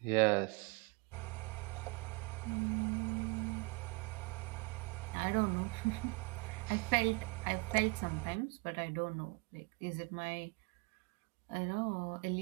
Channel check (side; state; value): left; quieter; 29.2 dB